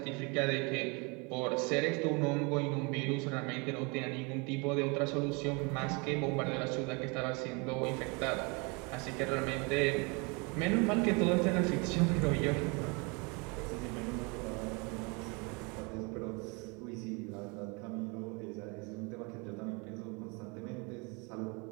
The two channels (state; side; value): quieter; left; 30.3 dB